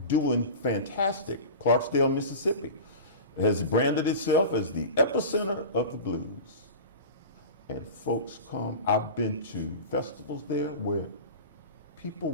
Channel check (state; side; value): inverted; both; correlation -0.31